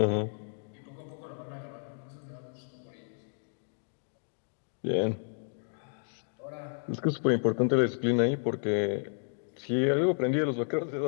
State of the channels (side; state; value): right; silent; digital silence